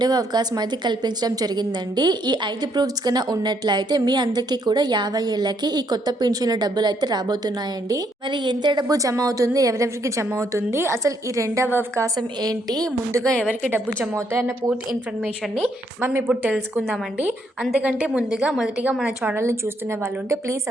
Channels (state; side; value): normal; both; correlation 0.72